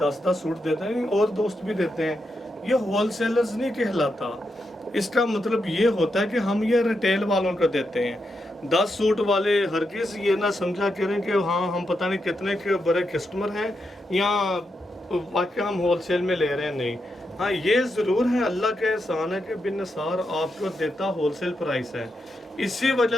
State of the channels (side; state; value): both; normal; correlation 0.84